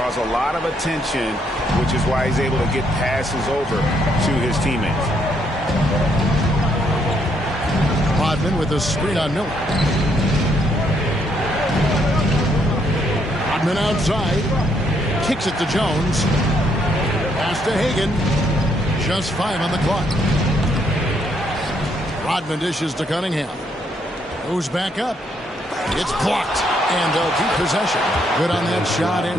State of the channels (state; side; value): normal; both; correlation 0.72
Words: a lot of attention, which is why he's able to get passes over to his teammates. Rodman with a screen on Miller. Rodman outside. Kicks it to Jones. Pass to Hagan. Just 5 on the clock. Rodman dishes to Cunningham. Goes back up. It's blocked. And they'll keep possession. Good on that shot.